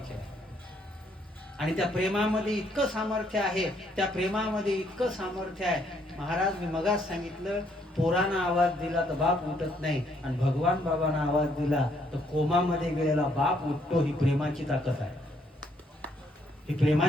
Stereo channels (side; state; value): both; normal; correlation 0.70